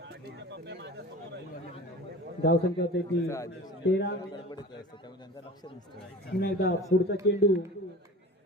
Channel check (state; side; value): normal; both; correlation 0.38